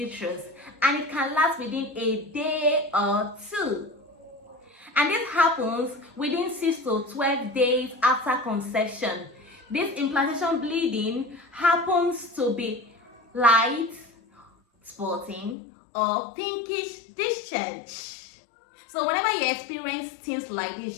and it can last within a day or two. And this happens within 6 to 12 days after conception. This implantation bleeding happens to be light, spotting, or pinkish discharge. So whenever you experience things like this,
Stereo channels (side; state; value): right; drops out; at 15.6 s